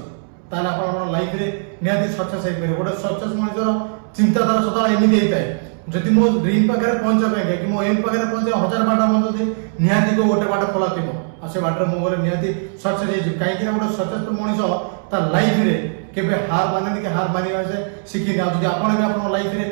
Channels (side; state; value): left; silent; 66 dB below the other